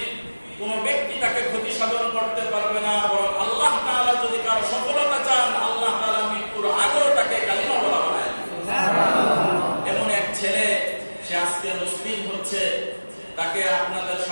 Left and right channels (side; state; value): both; inverted; correlation -1.00